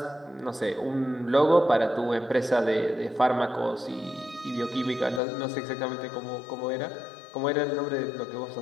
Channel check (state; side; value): drops out; right; at 5.2 s